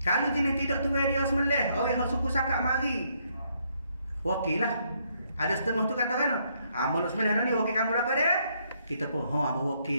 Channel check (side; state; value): both; inverted; correlation -0.72